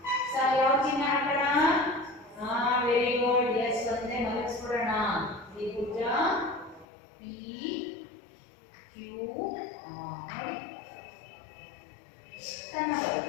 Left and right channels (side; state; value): right; drops out; at 6.9 s